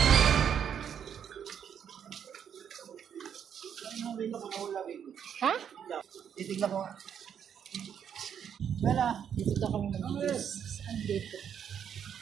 Ha? Titignan ko. Wala. Dito daw kami mag-juice. Saan dito?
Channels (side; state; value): left; quieter; 8.4 dB